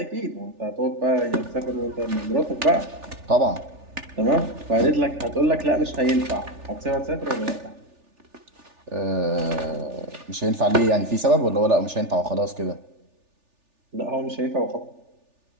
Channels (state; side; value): late; left; 3.4 ms